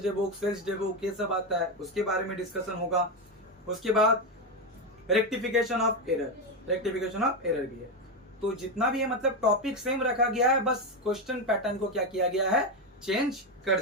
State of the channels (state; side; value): normal; both; correlation 0.10